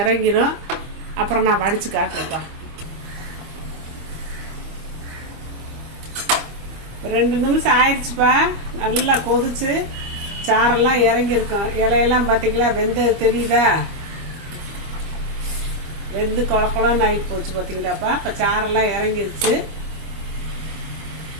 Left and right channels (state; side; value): late; left; 25 ms